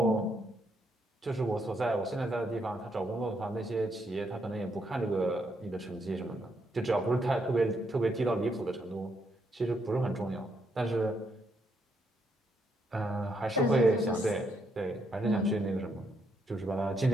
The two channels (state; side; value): normal; both; correlation 0.76